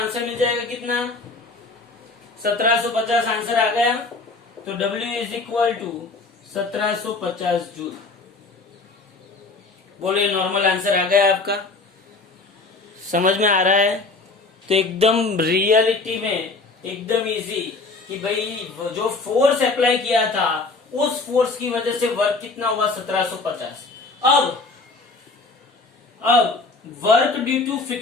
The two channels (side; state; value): right; quieter; 3.7 dB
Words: मिल जाएगा कितना? 1750 आंसर आ गया। तो W is equal to 1750 joule. बोलो ये नॉर्मल आंसर आ गया आपका, समझ में आ रहा है? तो एकदम रियलिटी में एकदम इजी कि भाई जो फोर्स अप्लाई किया था उस फोर्स की वजह से वर्क कितना हुआ? 1750। अब work due to